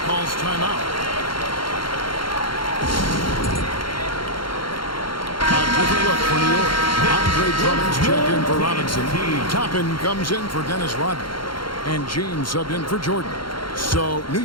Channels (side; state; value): right; late; 0.73 ms